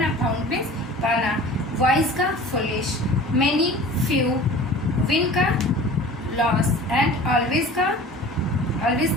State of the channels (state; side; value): normal; both; correlation 0.41